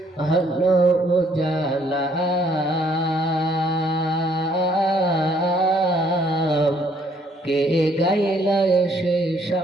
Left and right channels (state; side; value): normal; both; correlation 0.65